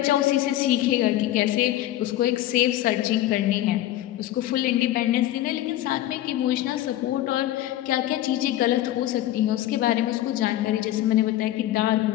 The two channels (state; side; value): quieter; right; 14.1 dB